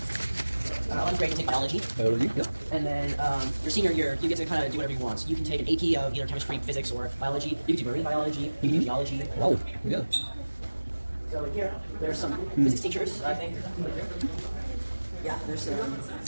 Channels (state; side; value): inverted; both; correlation -1.00